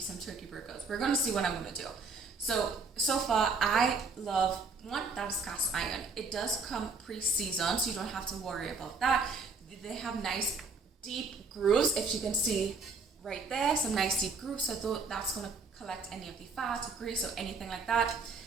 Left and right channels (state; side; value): quieter; left; 4.2 dB